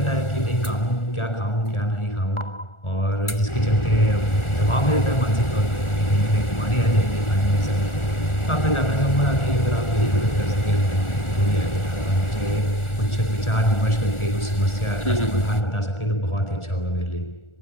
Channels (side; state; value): right; late; 1.4 ms